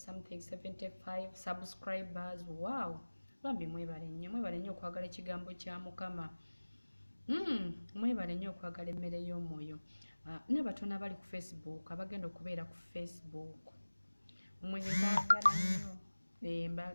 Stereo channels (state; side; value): inverted; both; correlation -1.00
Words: 75 subscribers wow bambi mwebale nnyo okwagala ekigambo kya Mukama mwebale nnyo okwagala emmere y'omwoyo n'abatono abali ku Facebook abagenda okubeera ku Facebook